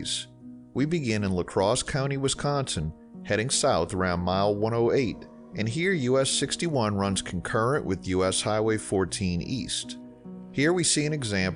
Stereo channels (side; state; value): both; identical; correlation 1.00